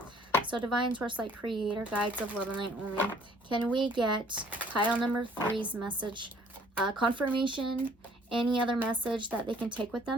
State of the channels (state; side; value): normal; both; correlation 0.58